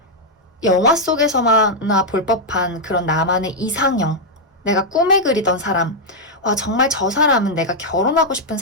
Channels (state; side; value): normal; both; correlation -0.03